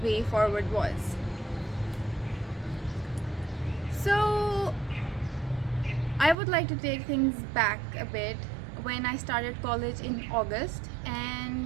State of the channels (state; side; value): drops out; left; at 6.4 s